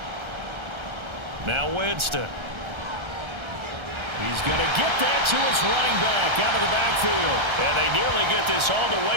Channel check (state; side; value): late; left; 1.3 ms